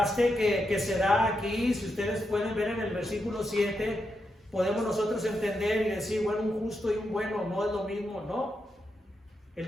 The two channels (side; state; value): both; normal; correlation 0.84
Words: que se da aquí, si ustedes pueden ver en el versículo 7, podemos nosotros entender y decir, bueno, un justo y un bueno no es lo mismo, no. El